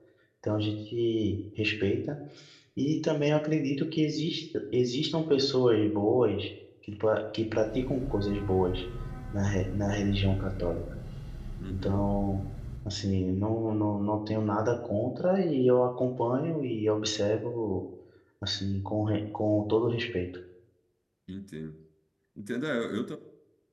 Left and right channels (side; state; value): both; identical; correlation 1.00